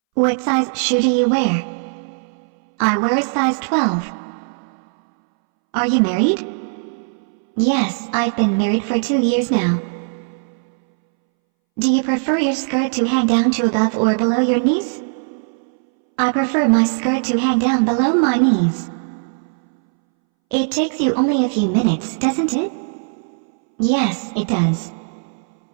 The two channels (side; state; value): left; silent; 65 dB below the other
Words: What size shoe do you wear? I wear a size 12. Are you married? Yes, I've been married for 2 years now. Do you prefer your skirt to hang down to above or below your knees? I prefer my skirt to hang down below my knees. It takes you only a few minutes, doesn't it? Yes, it does.